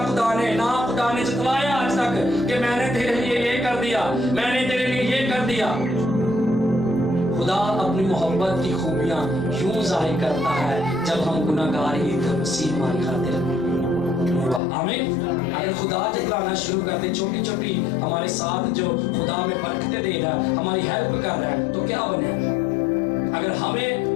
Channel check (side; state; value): right; drops out; at 14.6 s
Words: ने, ना खुदा ने जतलाया आज तक कि मैंने तेरे लिए ये कर दिया, मैंने तेरे लिए ये कर दिया। खुदा अपनी मोहब्बत की खूबियां यूं जाहिर करता है जब हम गुनाहगार ही थे, मसीह हमारी खातिर। आमीन। अगर खुदा जतलाना शुरू कर दे, छोटी छोटी हमारे साथ जो खुदा में बरकतें दे रहा है, हमारी हेल्प कर रहा है, तो क्या बने? अगर